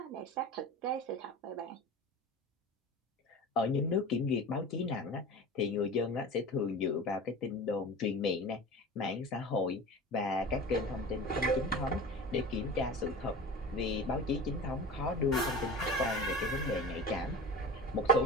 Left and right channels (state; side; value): normal; both; correlation 0.33